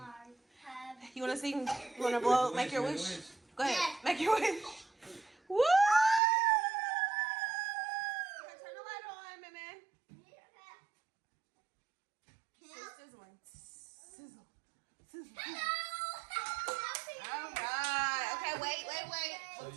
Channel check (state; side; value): drops out; left; at 6.2 s